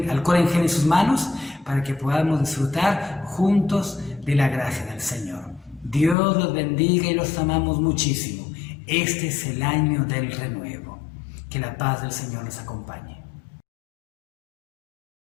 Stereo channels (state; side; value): drops out; right; at 6.2 s